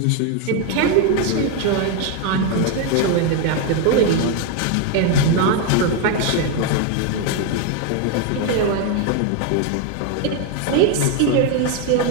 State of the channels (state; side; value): different; both; correlation 0.01